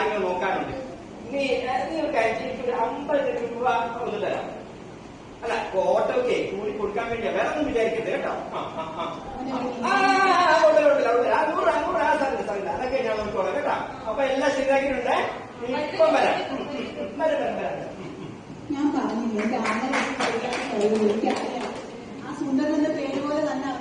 നോക്കാനുണ്ട്. നീ ഒരു കാര്യം, എനിക്കൊരു 50 രൂപ ഒന്ന് തരാം. അല്ല, ഓട്ടോക്കെ കൂടി കൊടുക്കാൻ വേണ്ടിയാ, വേറെ ഒന്നും വിചാരിക്കരുത് കേട്ടോ. അതൊക്കെ ഞാൻ നോക്കിക്കോളാം കേട്ടോ. അപ്പൊ എല്ലാം ശരിയാക്കിയിട്ടുണ്ട്. ഇപ്പം വരാം. ഞാൻ പറഞ്ഞില്ലേ ആ സുന്ദരന്റെ പേര് പോലെ തന്നെ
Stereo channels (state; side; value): identical; both; correlation 1.00